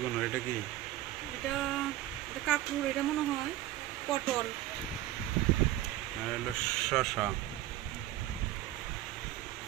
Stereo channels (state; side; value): quieter; left; 14.3 dB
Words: এটা কি এটা এটা কাঁকরুল এটা মনে হয় পটল আর হলো শসা